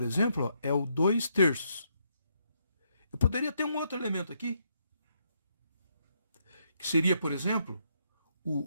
exemplo, ó, é o 2/3. Eu poderia ter um outro elemento aqui, que seria, por exemplo,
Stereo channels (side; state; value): both; inverted; correlation -0.76